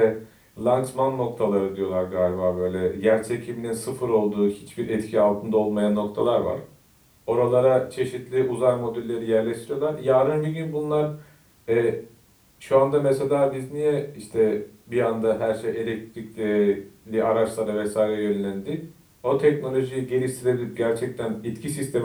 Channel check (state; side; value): identical; both; correlation 1.00